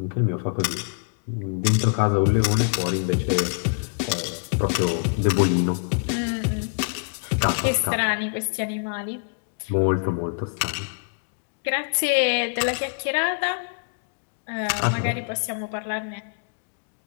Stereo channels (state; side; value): silent; right; digital silence